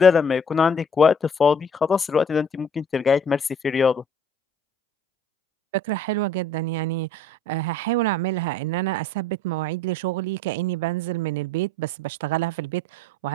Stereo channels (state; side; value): normal; both; correlation 0.53